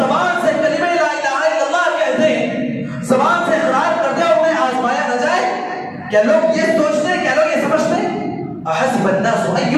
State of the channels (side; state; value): both; identical; correlation 1.00